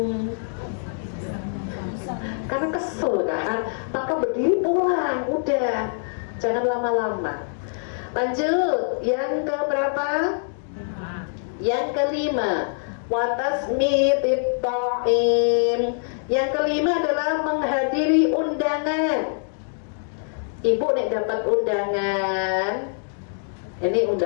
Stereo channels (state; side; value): silent; right; digital silence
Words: karena kesel kan, maka berdiri pulang, udah jangan lama-lama. Lanjut, yang ke berapa? Yang kelima, watasmitib ta'im. Yang kelima adalah menghadiri undangan. Ibu nek dapat undangan, ini